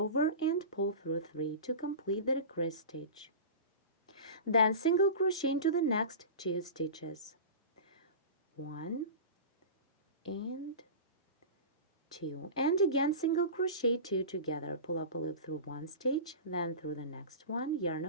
and pull through 3 to complete the decrease stitch. Then single crochet into the next 2 stitches. 1 and 2, and again single crochet 2 together. Pull up a loop through one stitch, then through the next one, yarn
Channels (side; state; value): both; inverted; correlation -0.31